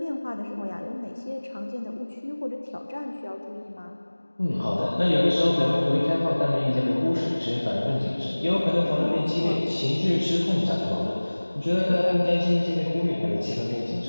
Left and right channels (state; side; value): inverted; both; correlation -1.00